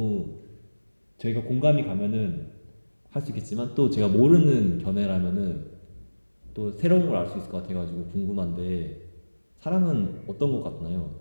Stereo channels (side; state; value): both; inverted; correlation -1.00